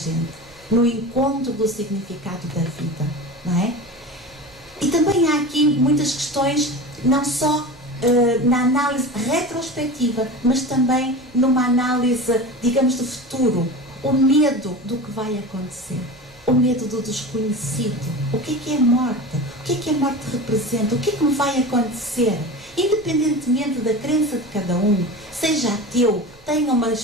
no encontro do significado da vida, não é? E também há aqui muitas questões, não só na análise retrospectiva, mas também numa análise, digamos, de futuro. O medo do que vai acontecer, o medo do desconhecido. O que é a morte? O que a morte representa? O que me vai acontecer? Independentemente da crença de cada um, seja ateu, tenha uma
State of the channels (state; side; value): noise; right; rumble, 27 dB below the sound